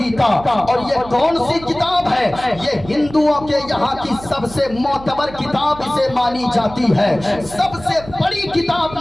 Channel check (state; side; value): noise; right; hum, 17 dB below the sound